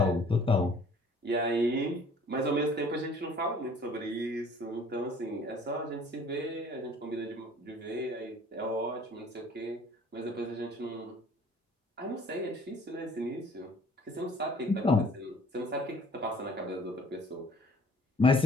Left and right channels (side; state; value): both; normal; correlation 0.54